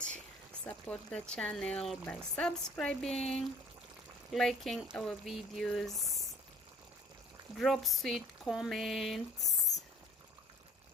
Support the channel by subscribing, liking our videos, drop sweet comments.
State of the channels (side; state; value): both; normal; correlation 0.52